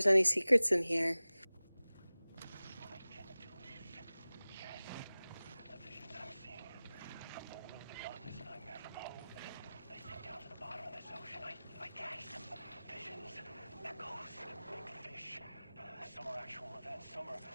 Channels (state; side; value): inverted; both; correlation -0.98